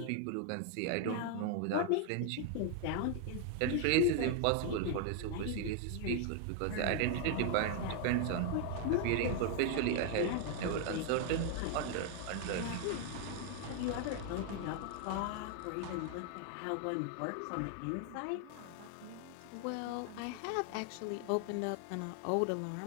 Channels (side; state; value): both; different; correlation 0.00